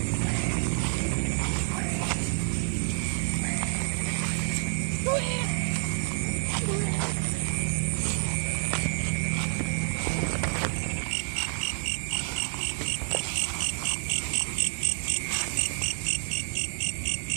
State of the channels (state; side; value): silent; left; 59 dB below the other